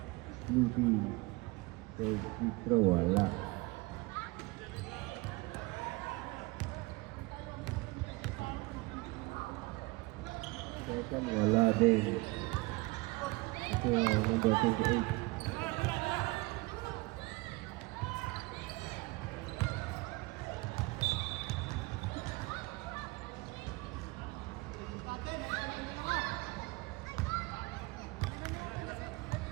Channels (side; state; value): left; quieter; 23.7 dB